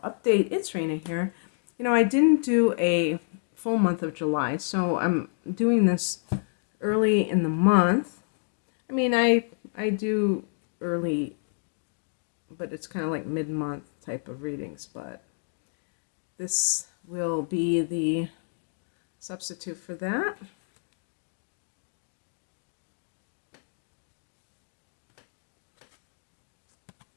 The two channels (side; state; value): right; silent; digital silence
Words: update. It's Raina here. I didn't do a full month of July, so I'm doing this early in the month. I do early, but it's kind of like mid-month type of readings, but this will be the substitute for that.